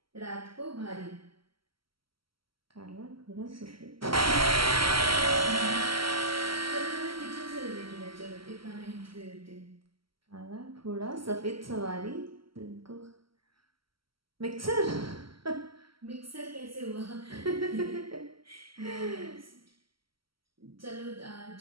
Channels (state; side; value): late; left; 0.74 ms